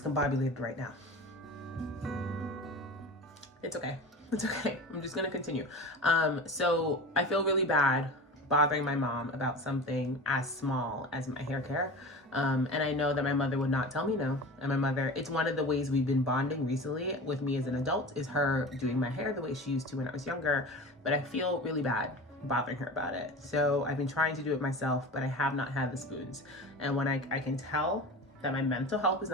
right now. It's okay. It's okay. I'm just going to continue. So I feel really bad bothering my mom about something as small as my hair care. And I know that my mother would not tell me no. And my mother, it's one of the ways we've been bonding recently with me as an adult is her doing my hair the way she used to when I was younger. But I feel really bad bothering her about it. So I've been trying to do it myself, but I have not had the spoons. And when I can tell that my mental health is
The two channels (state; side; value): normal; both; correlation 0.33